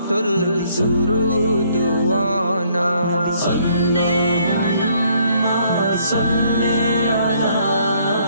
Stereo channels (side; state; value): both; inverted; correlation -0.66